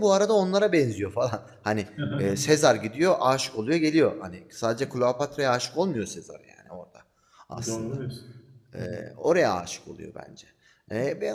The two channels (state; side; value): identical; both; correlation 1.00